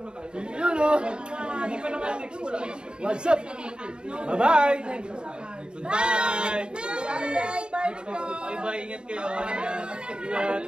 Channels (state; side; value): late; left; 0.050 ms